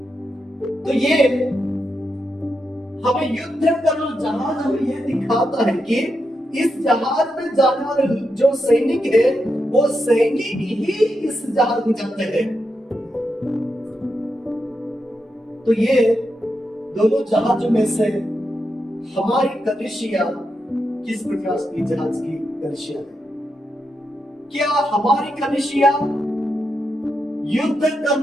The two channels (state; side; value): normal; both; correlation 0.85